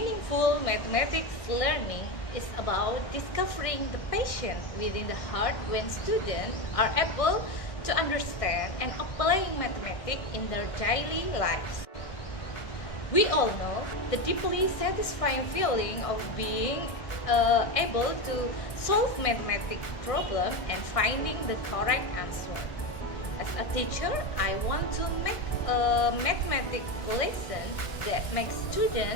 mathematics learning is about discovering the passion within the heart when students are able to understand and applying mathematics in their daily lives. We all know the deeply satisfying feeling of being able to solve mathematics problem and finding the correct answer. As a teacher, I want to make a mathematics lesson that makes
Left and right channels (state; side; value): late; right; 1.6 ms